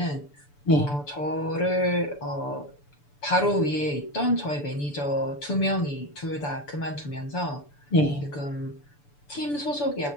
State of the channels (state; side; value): late; right; 6.9 ms